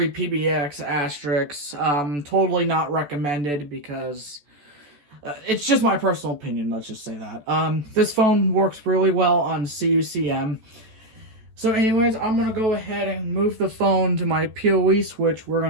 PBX, asterisks. Totally not recommended because it's just my personal opinion, let's just say that. This phone works really well on CUCM. So anyways, I'm going to go ahead and move the phone to my PoE switch. We're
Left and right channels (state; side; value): late; left; 14 ms